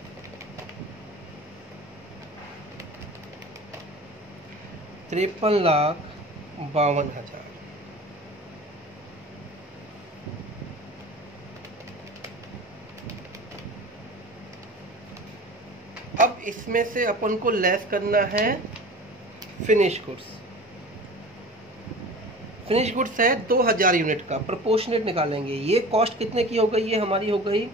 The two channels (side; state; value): both; normal; correlation 0.38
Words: ₹53,52,000। अब इसमें से अपन को लेस करना है फिनिश गुड्स। फिनिश गुड्स है 2,000 यूनिट का, प्रोपोर्शनेट निकालेंगे। ये कॉस्ट कितने की हो गई, ये हमारी हो गई